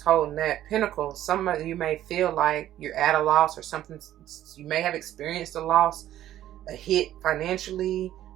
that pentacle. Some of you may feel like you're at a loss or something. You may have experienced a loss, a hit financially,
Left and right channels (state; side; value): quieter; left; 12.7 dB